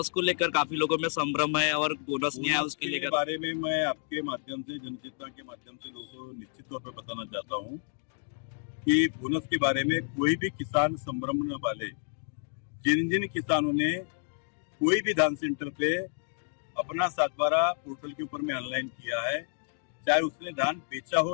को लेकर काफी लोगों में संभ्रम है और बोनस नहीं आया उसके लेकर बारे में मैं आपके माध्यम से जनचेतना के माध्यम से लोगों को निश्चित तौर पर बताना चाहता हूँ कि बोनस के बारे में कोई भी किसान संभ्रम न वाले। जिन जिन किसानों ने कोई भी धान सेंटर पे अपना 7/12 पोर्टल के ऊपर में ऑनलाइन किया है, चाहे उसने धान बेचा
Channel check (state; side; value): silent; right; 58 dB below the other